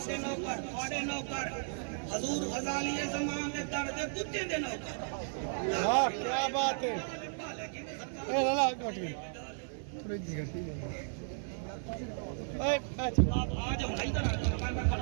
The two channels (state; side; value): silent; left; 55 dB below the other